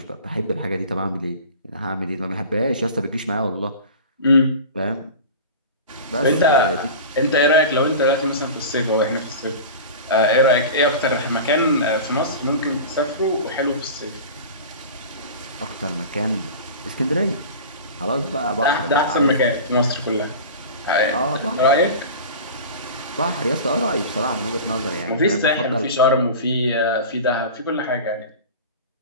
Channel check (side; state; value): both; inverted; correlation -0.33